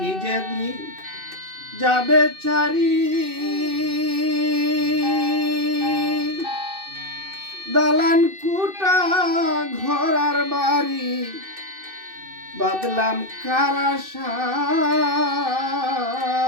যদি যাবে ছাড়ি, দালান কুটা ঘরার বাড়ি বাদলাম খারাসায়।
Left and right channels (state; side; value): late; left; 2.6 ms